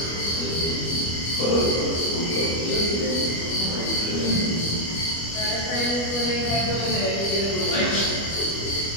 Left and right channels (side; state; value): right; late; 25 ms